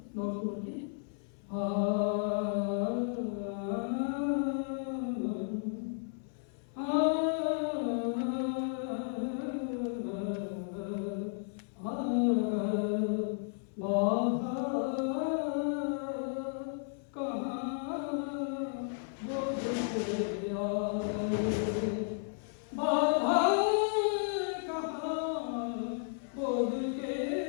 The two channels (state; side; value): silent; right; 55 dB below the other